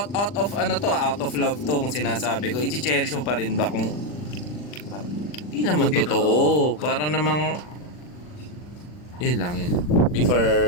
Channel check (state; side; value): late; right; 40 ms